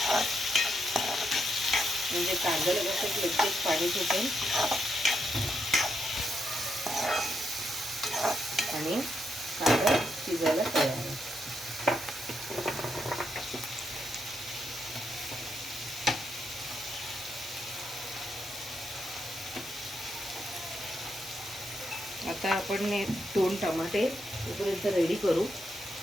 म्हणजे कांद्याला कसं लगेच पाणी सुटेल आणि कांदा शिजायला तयार आहे. आता आपण 2 टमाटे तोपर्यंत रेडी करू,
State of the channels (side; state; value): both; normal; correlation 0.81